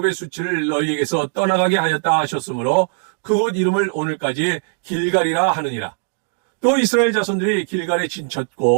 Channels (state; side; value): silent; left; digital silence